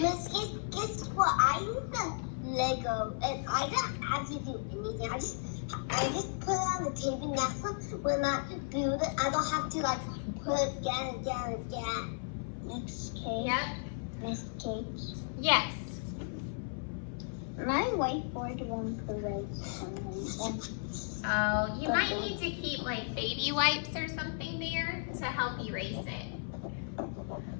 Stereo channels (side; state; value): right; silent; 55 dB below the other